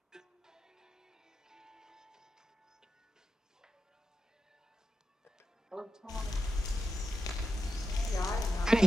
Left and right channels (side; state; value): both; normal; correlation 0.89